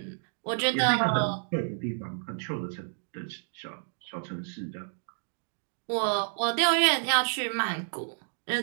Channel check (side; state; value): left; silent; digital silence